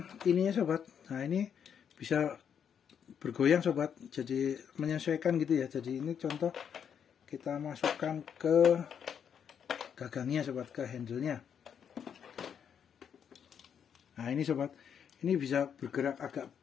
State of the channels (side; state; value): right; quieter; 7.9 dB